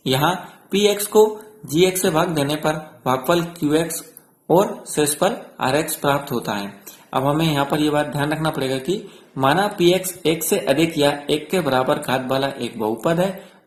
यहाँ px को gx से भाग देने पर भागफल qx और शेषफल rx प्राप्त होता है। अब हमें यहाँ पर यह बात ध्यान रखना पड़ेगा कि माना px 1 से अधिक या 1 के बराबर घात वाला एक बहुपद है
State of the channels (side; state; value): both; identical; correlation 1.00